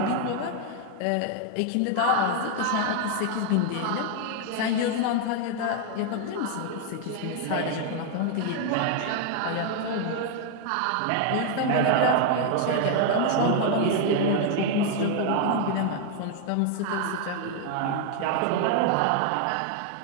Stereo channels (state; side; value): different; both; correlation 0.00